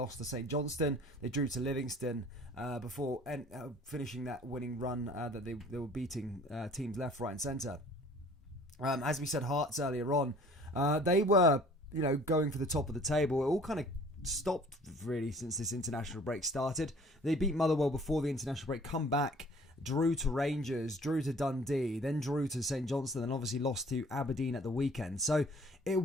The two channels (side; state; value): both; normal; correlation 0.52